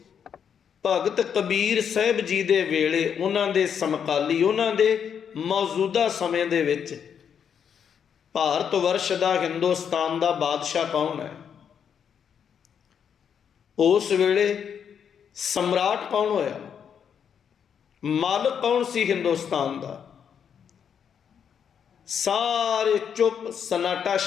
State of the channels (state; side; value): quieter; right; 7.8 dB